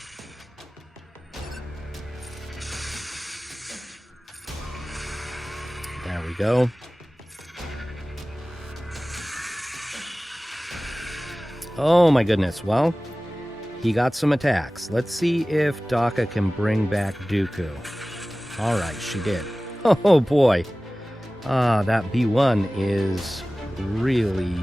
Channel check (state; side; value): normal; both; correlation 0.97